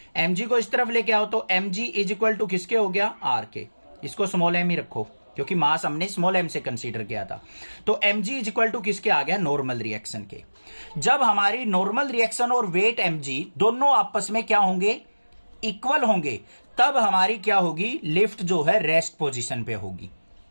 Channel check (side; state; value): both; inverted; correlation -1.00